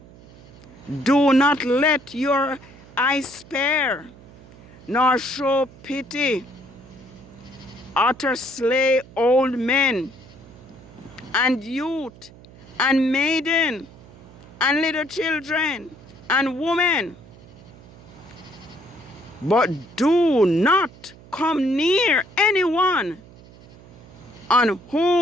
Do not let your eye spare, nor show pity. Utter slay old men, and youth, and maiden, and little children, and women. But do not come near anyone on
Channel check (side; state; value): right; noise; hum, 21 dB below the sound